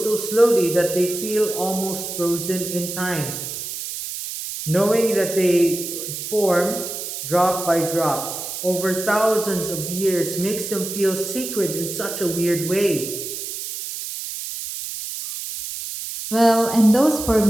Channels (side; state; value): right; noise; hiss, 7 dB below the sound